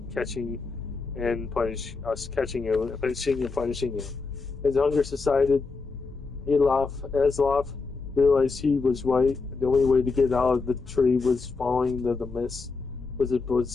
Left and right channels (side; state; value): right; quieter; 4.2 dB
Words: catching and punishing and punishing you?" As hunger subsided, Aslof realized he was right. The only way to get out of the tree was following the mist. Was